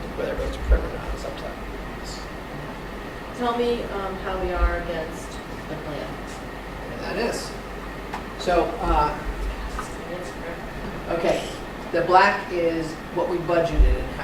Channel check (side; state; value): both; identical; correlation 1.00